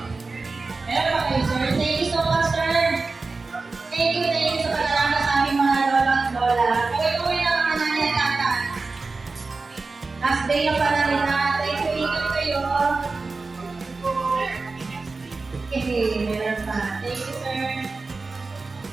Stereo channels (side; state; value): left; quieter; 3.8 dB